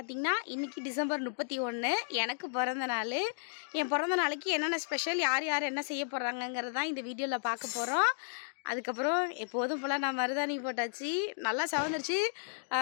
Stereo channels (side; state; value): right; silent; digital silence